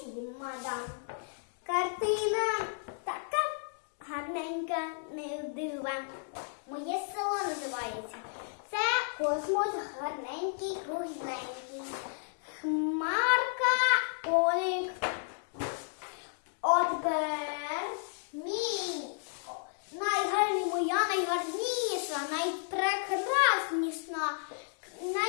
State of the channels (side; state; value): right; silent; digital silence